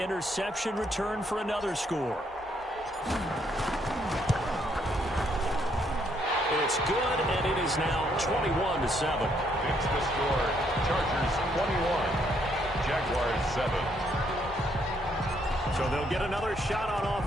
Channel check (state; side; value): normal; both; correlation 0.71